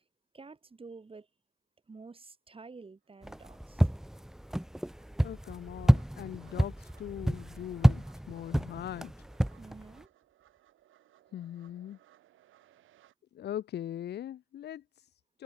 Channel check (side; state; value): both; normal; correlation 0.95